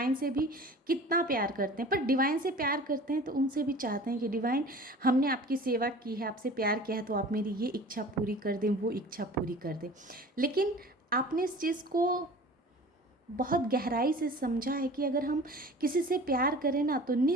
से भी कितना प्यार करते हैं, पर डिवाइन से प्यार करते हैं तो उनसे भी चाहते हैं कि डिवाइन, हमने आपकी सेवा की है, आपसे प्यार किया है, तो आप मेरी ये इच्छा पूरी कर दें, वो इच्छा पूरी कर दें। लेकिन आपने इस चीज़ को बहुत गहराई से समझा है कि अगर हम किसी से प्यार करें ना तो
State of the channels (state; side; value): normal; both; correlation 0.42